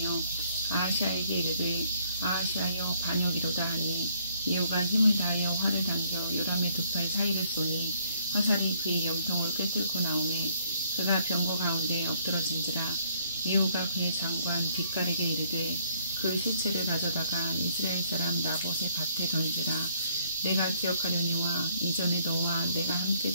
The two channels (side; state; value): both; inverted; correlation -0.66